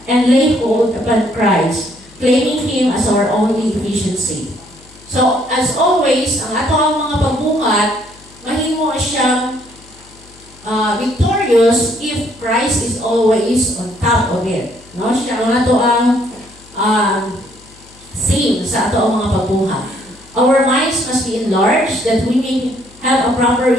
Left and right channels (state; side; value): noise; left; hum, 25 dB below the sound